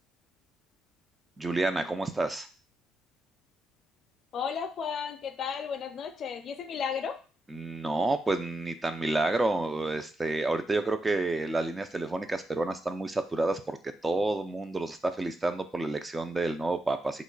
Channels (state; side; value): normal; both; correlation 0.85